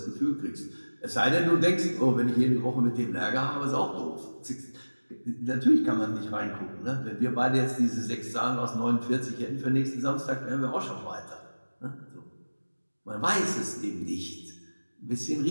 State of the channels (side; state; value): both; inverted; correlation -1.00